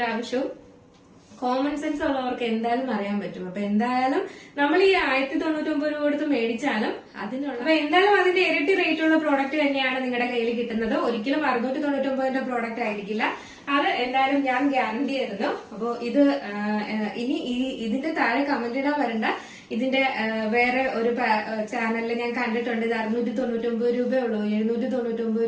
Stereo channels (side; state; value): both; identical; correlation 1.00